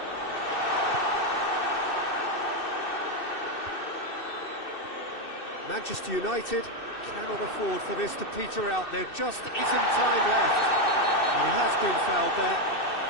Manchester United cannot afford for this to peter out. There just isn't time left. And he has been fouled there.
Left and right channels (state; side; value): late; right; 2.6 ms